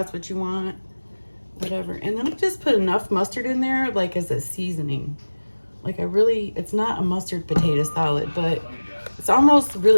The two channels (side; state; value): both; inverted; correlation -1.00